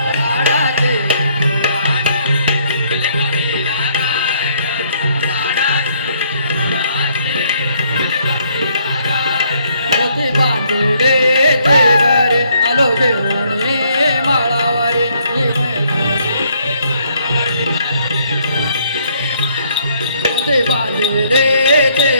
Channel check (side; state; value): both; inverted; correlation -0.68